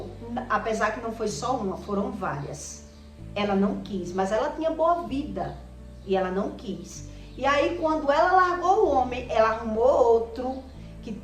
Apesar que não foi só uma, foram várias. Ela não quis, mas ela tinha boa vida. E ela não quis. E aí, quando ela largou o homem, ela arrumou outro, que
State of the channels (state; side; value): identical; both; correlation 1.00